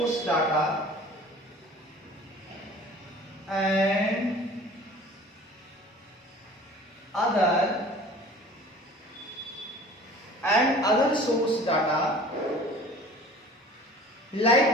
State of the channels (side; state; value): both; normal; correlation 0.45